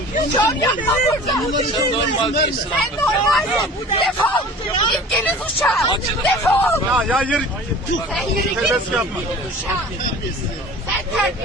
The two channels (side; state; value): both; normal; correlation 0.42